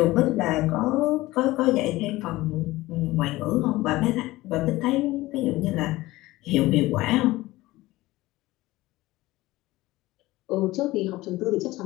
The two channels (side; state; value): right; quieter; 18.5 dB